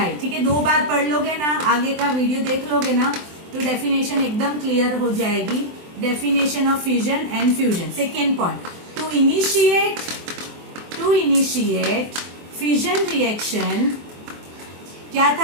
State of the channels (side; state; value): left; late; 23 ms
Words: ठीक है, 2 बार पढ़ लोगे ना, आगे का वीडियो देख लोगे ना, तो डेफिनेशन एकदम क्लियर हो जाएगी. Definition of fusion and fusion. Second point, to initiate fusion reaction क्या